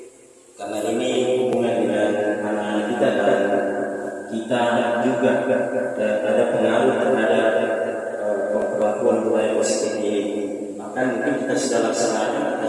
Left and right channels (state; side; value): identical; both; correlation 1.00